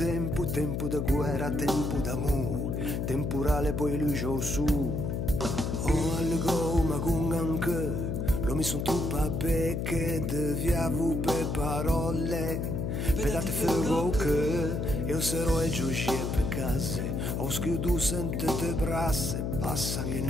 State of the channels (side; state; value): left; noise; hum, 1 dB below the sound